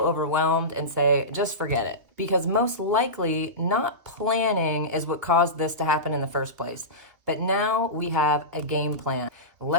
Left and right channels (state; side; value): late; left; 2.6 ms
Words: and say, just forget it. Because most likely not planning is what caused this to happen in the first place. But now we have a game plan.